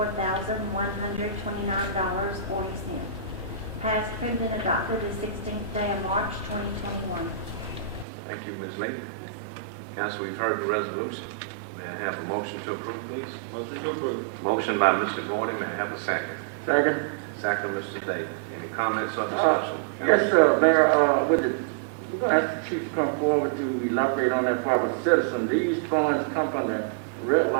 Passed, approved, and adopted the 16th day of March 2021. Thank you, Ms. Lee. Council, we've heard the resolution. May I have a motion to approve, please? Motion to approve. Motion by Mr. Gordon, may I have a second? Second. Second, Mr. Day. Any comments or discussion? Yes, Mayor, we're gonna ask the chief to come forward to elaborate on that for our citizen. These funds come from the red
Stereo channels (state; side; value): drops out; left; at 8.1 s